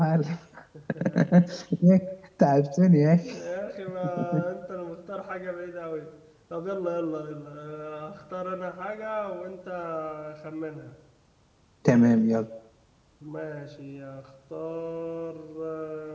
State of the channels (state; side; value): identical; both; correlation 1.00